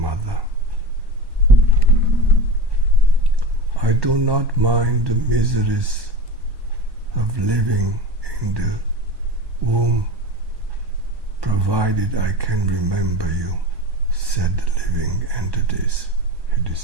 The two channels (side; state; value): left; late; 1.1 ms